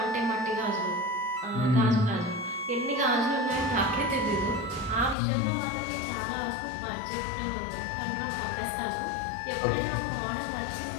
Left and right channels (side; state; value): right; drops out; at 5.2 s